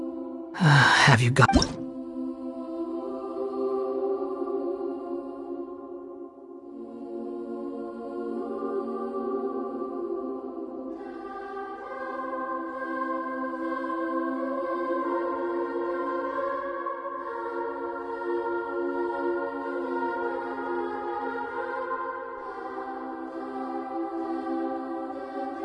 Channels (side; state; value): both; identical; correlation 1.00